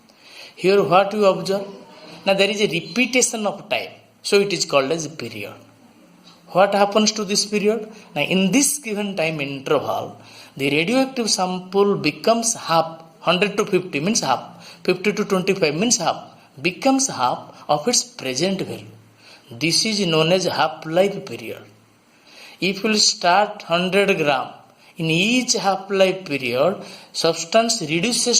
Here what you observe? Now there is a repetition of time. So it is called as a period. What happens to this period? Now in this given time interval, the radioactive sample becomes half. 100 to 50 means half. 50 to 25 means half. Becomes half of its present value. This is known as half-life period. If you will start 100 gram, in each half-life period, substance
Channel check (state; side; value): identical; both; correlation 1.00